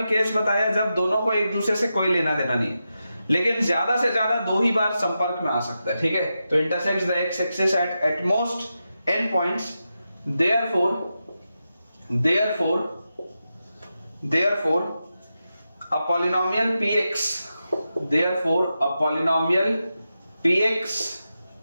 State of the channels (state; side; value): inverted; both; correlation -0.89